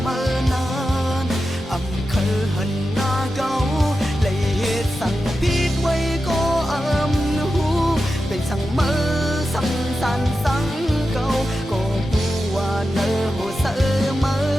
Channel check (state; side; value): normal; both; correlation 0.91